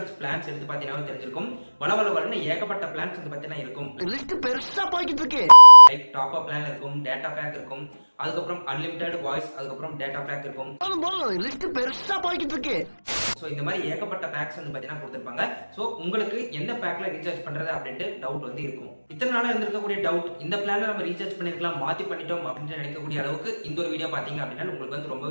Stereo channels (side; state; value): both; inverted; correlation -1.00